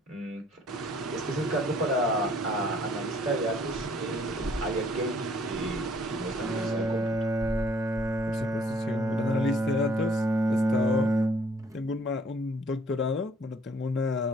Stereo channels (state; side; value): normal; both; correlation 0.60